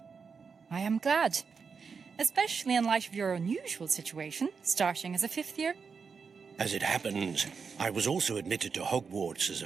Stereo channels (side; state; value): left; quieter; 5.6 dB